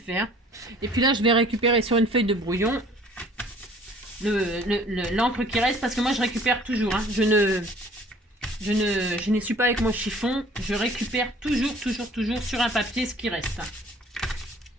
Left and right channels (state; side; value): normal; both; correlation 0.53